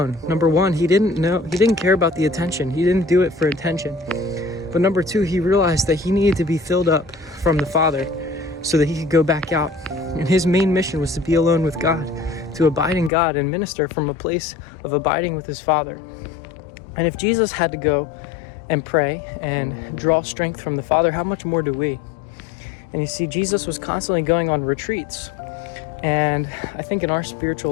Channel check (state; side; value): drops out; right; at 13.1 s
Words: Number one, he didn't care about the attention. He didn't do it for attention. But number two, he realized that he needed to be filled up from the Father so that he could go back out. And his main mission was to be alone with God, to abide in God and minister from a place of abiding with his Father. And if Jesus had to go and pray and draw strength from the Father, how much more do we? And you see, Jesus was constantly going on retreats. And I think in our